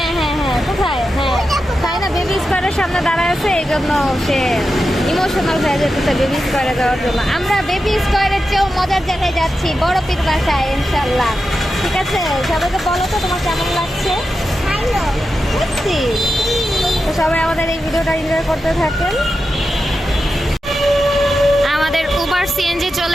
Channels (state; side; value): normal; both; correlation 0.90